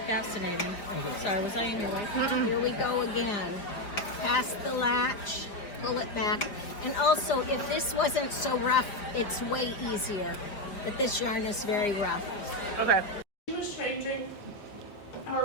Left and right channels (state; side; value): late; right; 4.8 ms